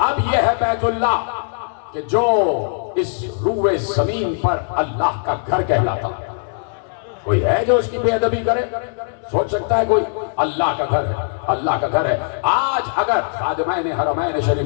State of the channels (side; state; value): right; silent; 64 dB below the other